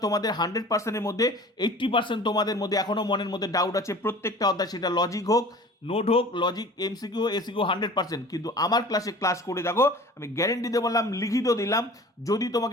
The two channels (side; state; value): both; normal; correlation 0.43